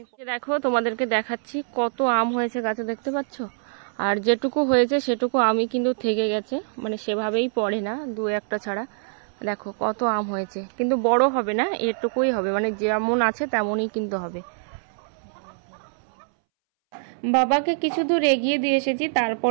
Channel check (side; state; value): left; silent; 62 dB below the other